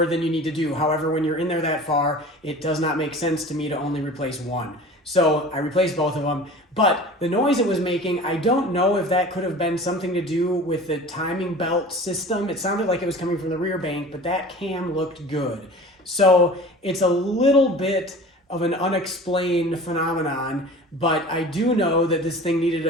than you need to do. However, when you're in there that far, it does not make sense to me to only replace one. So I replaced both of them, but the noise it was making, I don't know if that could have been something to do with the timing belt system. It sounded like it was coming from the rear bank, but that cam looked good. So it's a little bit of an unexplained phenomenon, but I do know that this thing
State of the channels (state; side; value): normal; both; correlation 0.40